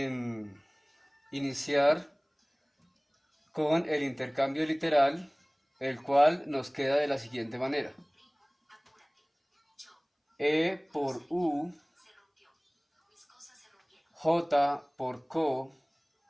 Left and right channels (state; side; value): identical; both; correlation 1.00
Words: iniciar con el intercambio literal, el cual nos queda de la siguiente manera. E por U, J por co,